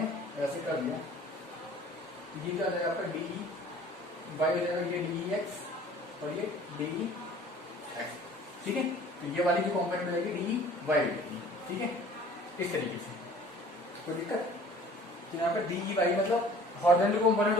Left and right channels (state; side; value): normal; both; correlation 0.49